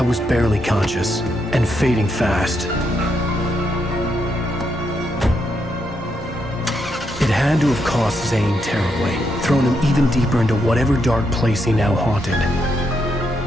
was barely conscious and fading fast. It had to have cost Zane terribly, thrown him even deeper into whatever dark place he now haunted.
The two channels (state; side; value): normal; both; correlation 0.79